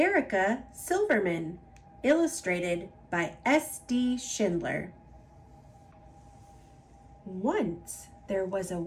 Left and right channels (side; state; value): both; identical; correlation 1.00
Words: Silverman, illustrated by S.D. Schindler. Once there was a